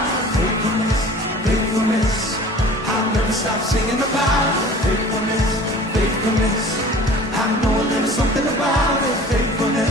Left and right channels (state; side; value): normal; both; correlation 0.44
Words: faithfulness, faithfulness. I'll never stop singing about faithfulness, faithfulness. I know there is something about it,